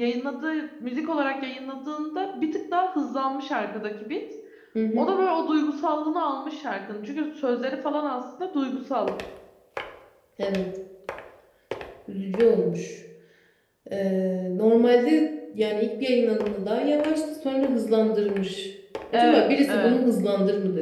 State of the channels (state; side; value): identical; both; correlation 1.00